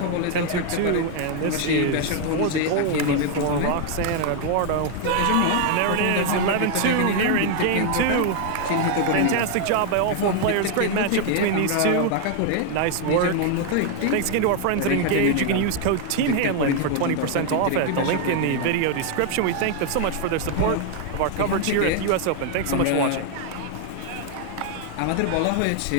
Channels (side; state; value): both; different; correlation 0.00